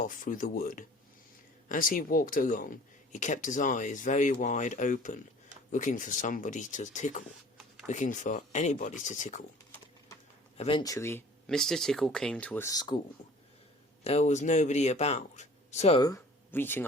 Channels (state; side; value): normal; both; correlation 0.49